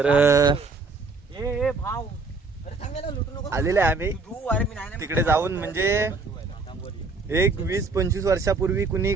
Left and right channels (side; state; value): left; quieter; 3.9 dB